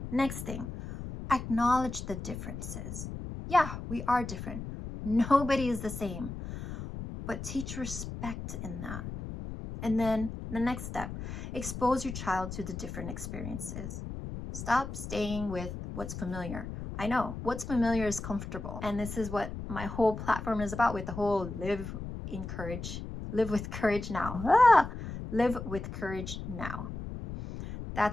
Next thing, acknowledge the differences. Yeah, we are different. Nobody is the same. But teach respect in that. And then the next step, expose your child to the different experiences. Stop staying with what's familiar. I know what's familiar is comfortable. And this is what my whole platform is about, with the whole live with courage now. Live with courage now.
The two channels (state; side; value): noise; left; rumble, 8 dB below the sound